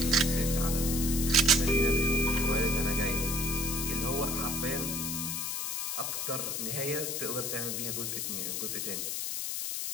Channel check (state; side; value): noise; left; hiss, 2 dB below the sound